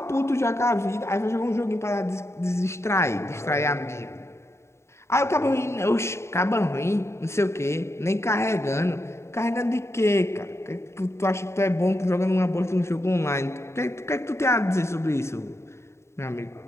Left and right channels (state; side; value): late; right; 0.13 ms